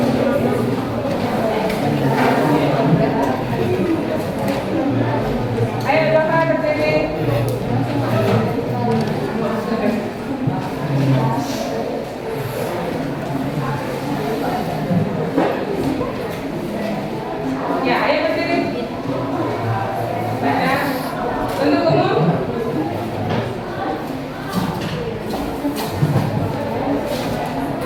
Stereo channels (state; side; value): identical; both; correlation 1.00